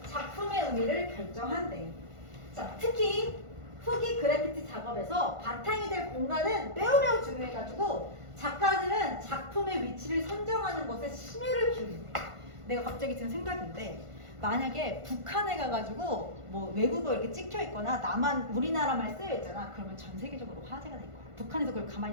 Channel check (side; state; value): left; late; 1.5 ms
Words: 작품의 의미를 결정한대. 자, 특히 후기 그래피티 작업에서 바탕이 될 공간은 매우 중요해가지고 작가들은 작품의 위치를 선정하는 것에 심혈을 기울인대. 내가 갑자기 든 생각인데 만약에 북한에 가가지고 뭐 외국어 이렇게 찍혀 있거나 우리나라만 쓰여 있잖아. 그러면 전 세계적으로 화제가 될 거야. 북한에서 그걸 가만히